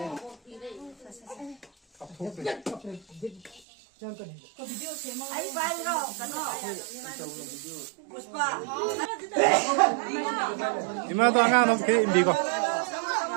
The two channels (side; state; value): left; drops out; at 3.6 s